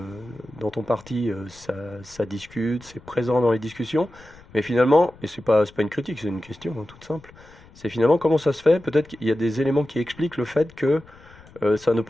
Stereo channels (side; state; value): left; noise; rumble, 24 dB below the sound